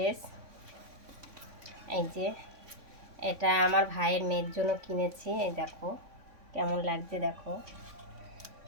এই যে এটা আমার ভাইয়ের মেয়ের জন্য কিনেছি। এই দেখো কেমন লাগছে, দেখো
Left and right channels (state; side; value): late; left; 3.6 ms